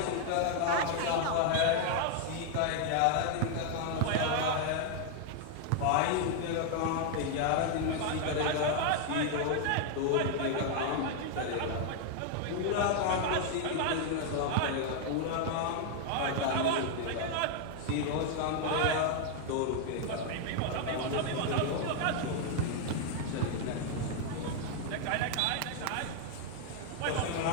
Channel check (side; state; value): both; different; correlation 0.00